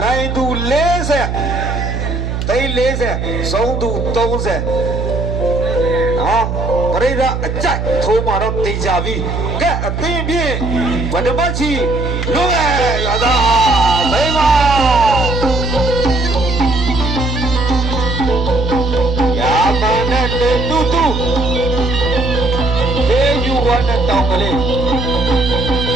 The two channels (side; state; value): right; noise; hum, 3 dB below the sound